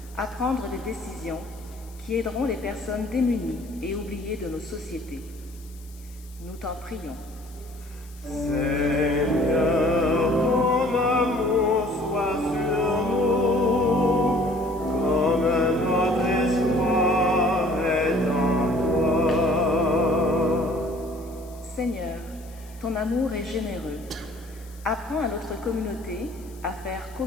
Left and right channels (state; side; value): noise; left; hiss, 24 dB below the sound